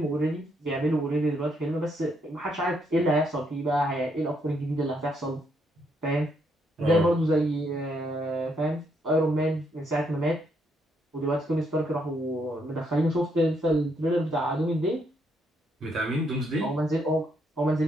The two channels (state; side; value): normal; both; correlation 0.74